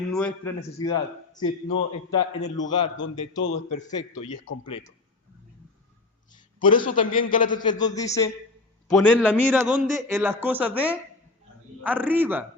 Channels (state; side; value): quieter; right; 3.3 dB